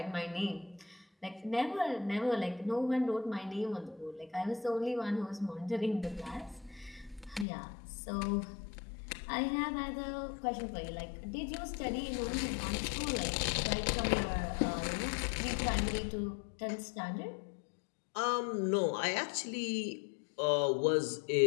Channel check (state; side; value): drops out; right; at 7.5 s